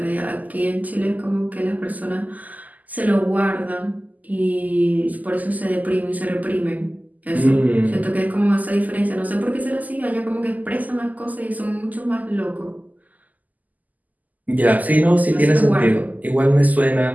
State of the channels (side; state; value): left; late; 0.080 ms